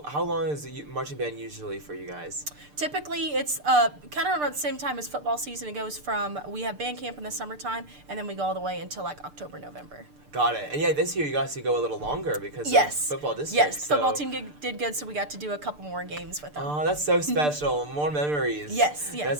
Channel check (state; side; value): late; left; 6.7 ms